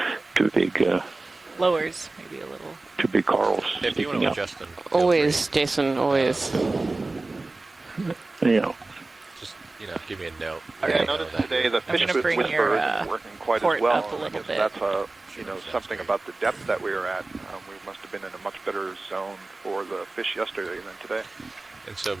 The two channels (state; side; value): quieter; left; 3.2 dB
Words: two big lowers maybe a little. two big corals If you want sticking to up. adjust them, always, Jason, always. Yeah. just give me a note. I noticed today the fish gonna bring whisperer your, isn't working quite port as well. up a I little guess bit. that's something about the depth that we were at. We must have been in a much better zone for the fish yesterday than today. And so